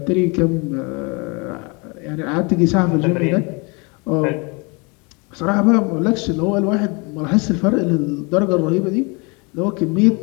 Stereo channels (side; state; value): right; quieter; 30.1 dB